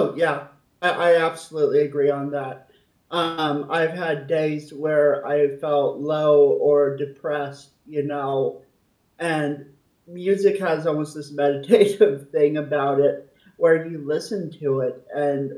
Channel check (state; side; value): identical; both; correlation 1.00